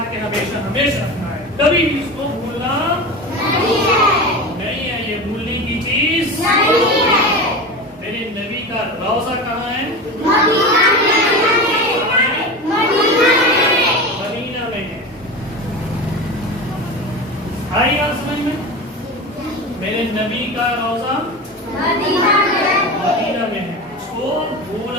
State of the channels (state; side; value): normal; both; correlation 0.27